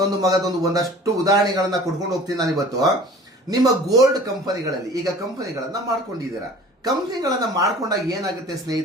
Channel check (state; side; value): normal; both; correlation 0.45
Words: ಮಗದೊಂದು, ಒಂದಷ್ಟು ಉದಾಹರಣೆಗಳನ್ನ ಕೊಟ್ಕೊಂಡು ಹೋಗ್ತೀನಿ ನಾನು ಇವತ್ತು. ನಿಮ್ಮ ಗೋಲ್ಡ್ ಕಂಪನಿಗಳಲ್ಲಿ ಈಗ ಕಂಪನಿಗಳನ್ನ ಮಾಡ್ಕೊಂಡಿದ್ದೀರಾ. ಕಂಪನಿಗಳನ್ನ ಮಾಡ್ಕೊಂಡಾಗ ಏನಾಗುತ್ತೆ